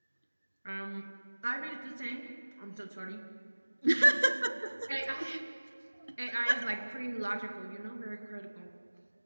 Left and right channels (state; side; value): inverted; both; correlation -1.00